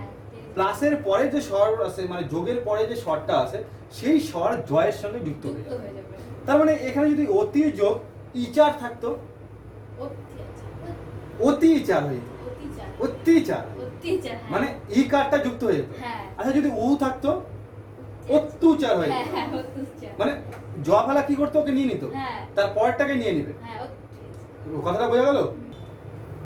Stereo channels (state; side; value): identical; both; correlation 1.00